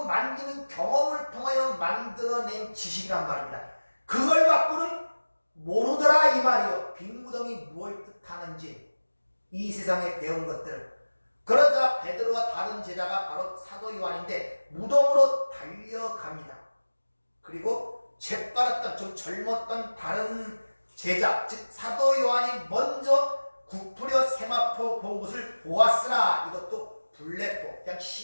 만지는 경험을 통하여 만들어낸 지식이란 말입니다. 그걸 갖고는 모르더라 이 말이요. 빈무덤이 무엇을 뜻하는지 이 세상에 배운 것들을. 그러자 베드로와 다른 제자가 바로 사도 요한인데 무덤으로 달려갑니다. 그리고 재빠랐던 좀 젊었던 다른 제자 즉 사도 요한이 먼저 구부려 세마포 본 것을 보았으나 이것도 블랙보, 그냥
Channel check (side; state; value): both; inverted; correlation -1.00